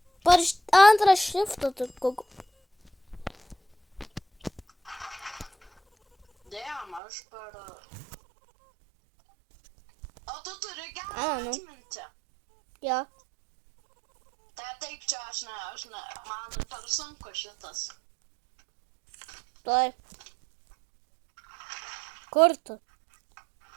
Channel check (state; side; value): drops out; left; at 7.0 s